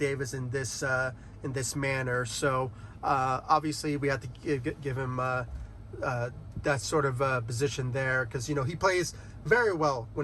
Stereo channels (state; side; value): identical; both; correlation 1.00